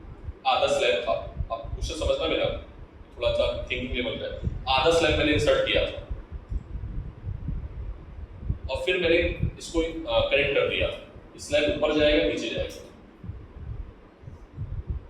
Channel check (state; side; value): identical; both; correlation 1.00